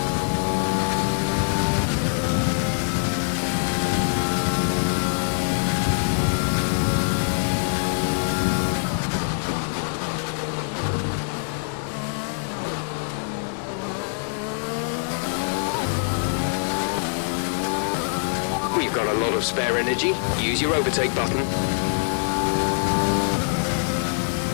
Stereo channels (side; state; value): right; silent; digital silence